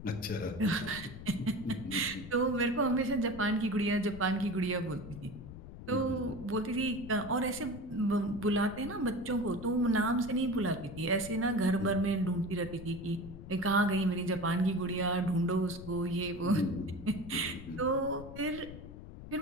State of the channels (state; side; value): noise; left; rumble, 13 dB below the sound